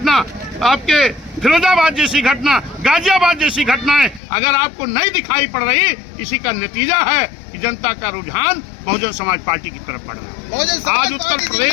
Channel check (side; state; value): right; drops out; at 4.2 s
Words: आपके फिरोजाबाद जैसी घटना, गाजियाबाद जैसी घटनाएं अगर आपको नहीं दिखाई पड़ रही, इसी का नतीजा है कि जनता का रुझान बहुजन समाज पार्टी की तरफ बढ़ रहा है। आज उत्तर